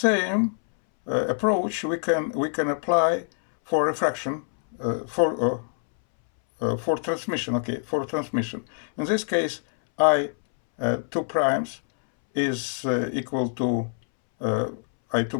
approach we can apply for refraction for transmission. Okay, for transmission. In this case, I2 primes is equal to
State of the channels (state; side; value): silent; right; 62 dB below the other